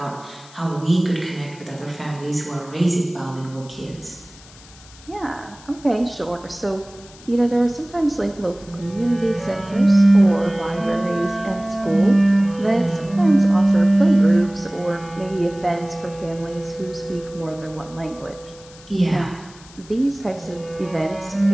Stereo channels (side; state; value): left; noise; hiss, 22 dB below the sound